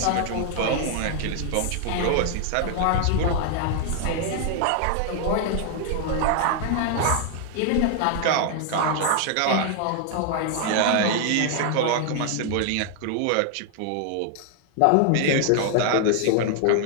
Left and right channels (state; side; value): different; both; correlation 0.00